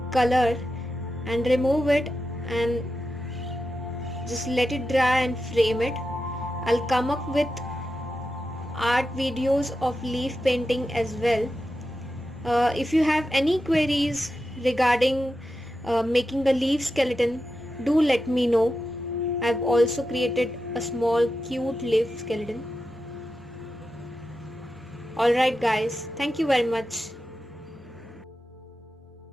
color and remove it and just let it dry and frame it. I'll come up with art videos of leaf painting as well. If you have any queries regarding making a leaf skeleton, do let me know. I've also created a small cute leaf skeleton. Alright guys, thank you very much.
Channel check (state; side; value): normal; both; correlation 0.90